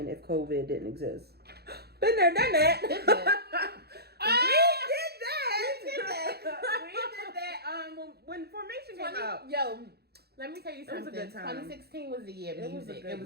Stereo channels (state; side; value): late; left; 0.47 ms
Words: if COVID didn't exist? Been there, done that. Let me tell you It was a something. good time. 2016 was the year of It was a music. good It